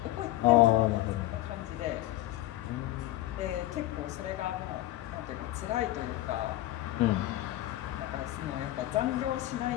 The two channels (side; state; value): right; quieter; 15.7 dB